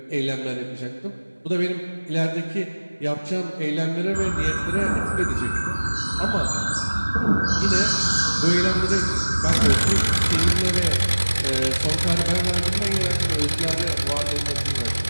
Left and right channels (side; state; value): both; inverted; correlation -1.00